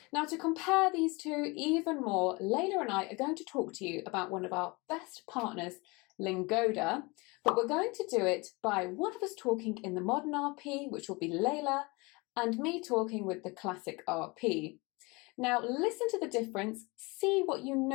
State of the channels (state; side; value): quieter; right; 26.1 dB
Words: Now, to compare these two even more, Leila and I are going to talk to you about one of our best partners, Lingoda, but we're going to do it by one of us talking in the modern RP, which will be Leila, and me talking with the classic RP. Now, listen to the difference, see what you